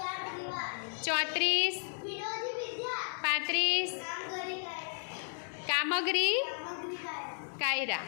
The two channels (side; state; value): right; silent; 55 dB below the other